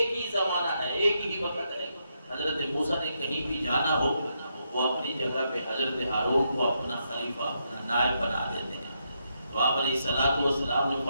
ہی زمانہ ہے، ایک ہی وقت ہے۔ حضرت موسیٰ نے کہیں بھی جانا ہو وہ اپنی جگہ پہ حضرت ہارون کو اپنا خلیفہ، اپنا نائب بنا دیتے ہیں۔ تو آپ علیہ السلام نے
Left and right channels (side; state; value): both; inverted; correlation -0.80